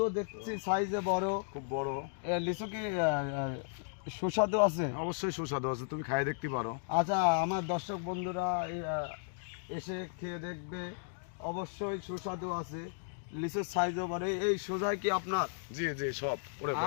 দেখছি সাইজে বড়, খুব বড়। লিচু কি সুস্বাদু আছে? অবশ্যই সুস্বাদু আছে, তুমি খাই দেখতে পারো। আচ্ছা, আমার দর্শক বন্ধুরা এসে খেয়ে দেখবে, অবশ্যই সুস্বাদু আছে। লিচুর সাইজও বড়। এই সোজাই কি আপনার? জি জি, সব ওরে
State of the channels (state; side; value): silent; right; digital silence